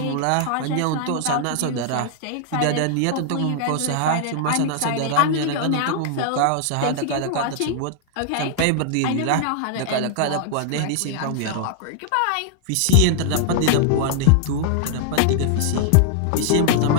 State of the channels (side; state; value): both; different; correlation -0.01